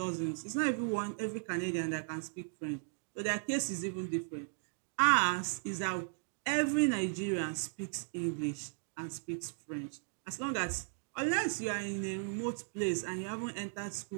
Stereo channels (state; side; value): silent; left; digital silence